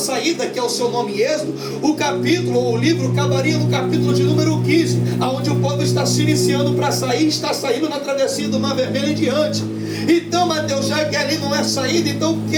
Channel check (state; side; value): identical; both; correlation 1.00